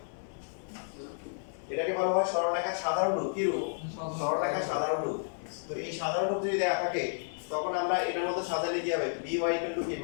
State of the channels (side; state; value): right; silent; digital silence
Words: এটাকে বলা হয় সরলরেখার সাধারণ রূপ। কি রূপ? সরলরেখার সাধারণ রূপ। তো এই সাধারণ রূপ যদি দেয়া থাকে তখন আমরা এটার মধ্যে সাজালে কি হবে? by কি